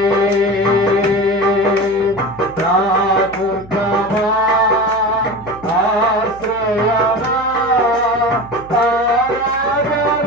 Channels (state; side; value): noise; right; hum, 20 dB below the sound